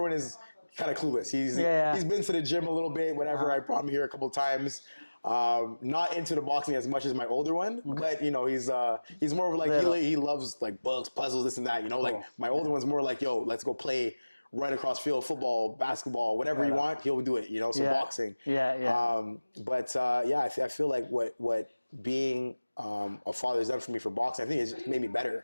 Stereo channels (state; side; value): inverted; both; correlation -1.00